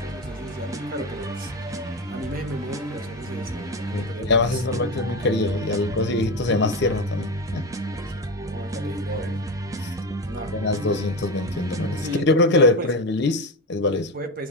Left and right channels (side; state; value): both; normal; correlation 0.19